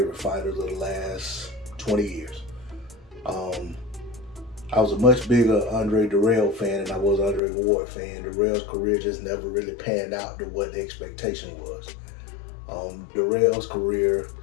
fighters of the last 20 years. I was a much bigger Andre Dirrell fan than I was Andre Ward fan. Dirrell's career just never really panned out to what the expectation was. Dirrell's career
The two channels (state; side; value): drops out; right; at 7.4 s